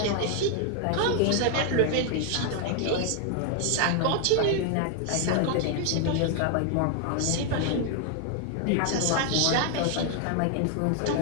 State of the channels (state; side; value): different; both; correlation 0.00